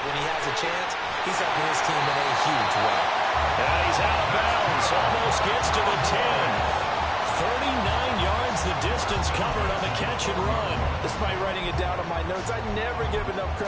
when he has a chance, he's helping his team in a huge way. And he's out of bounds, almost gets to the 10. 39 yards the distance covered on the catch and run. Despite writing it down on my notes, I never give enough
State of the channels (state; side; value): identical; both; correlation 1.00